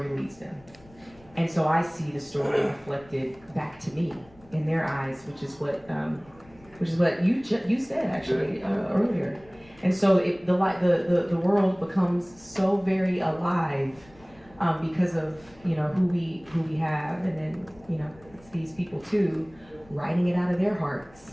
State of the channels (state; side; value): noise; left; rumble, 26 dB below the sound